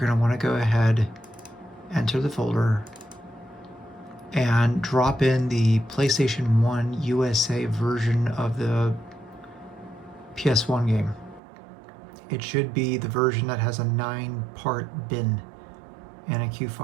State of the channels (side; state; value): left; drops out; at 11.4 s